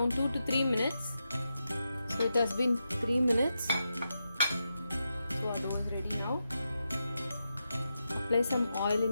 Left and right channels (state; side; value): inverted; both; correlation -0.87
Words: 2 to 3 minutes. So it has been 3 minutes. So our dough is ready now. Apply some oil